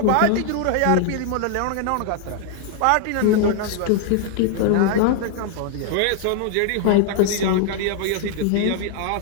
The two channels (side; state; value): both; different; correlation 0.00